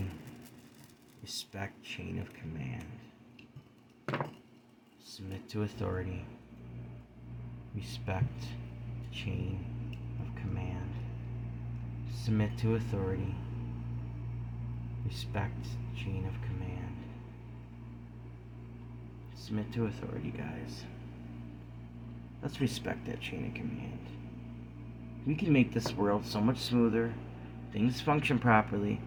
Respect chain of command. Submit to authority. Respect chain of command. Submit to authority. Respect chain of command. Submit to authority, guys. Let's respect that chain of command. We can make this world so much smoother. Things function properly.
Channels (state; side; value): identical; both; correlation 1.00